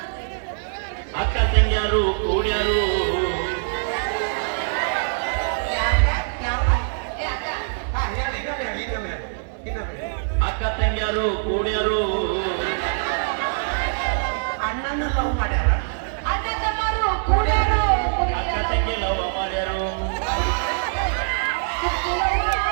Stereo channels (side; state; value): left; silent; digital silence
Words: ಅಕ್ಕ ತಂಗಿಯಾರು ಕೂಡ್ಯಾರು ಅಕ್ಕ ತಂಗಿಯಾರು ಕೂಡ್ಯಾರು ಅಣ್ಣನ ಲವ್ ಮಾಡ್ಯಾರ ಅಣ್ಣ ತಮ್ಮರು ಕೂಡ್ಯಾರು ಅಕ್ಕ ತಂಗಿ ಲವ್ ಮಾಡ್ಯಾರು